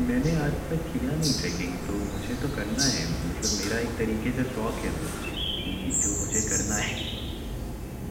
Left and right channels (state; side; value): identical; both; correlation 1.00